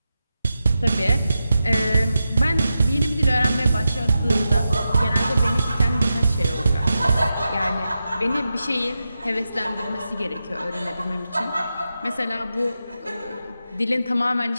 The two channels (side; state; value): both; inverted; correlation -0.90